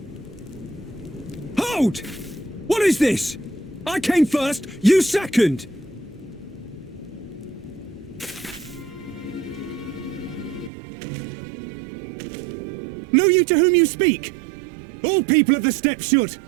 Hold! What is this? I came first, you second! Know you to whom you speak? All people of the steppe should.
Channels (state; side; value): drops out; left; at 10.7 s